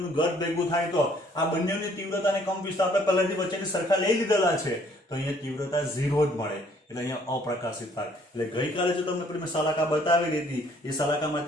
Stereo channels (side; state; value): both; normal; correlation 0.61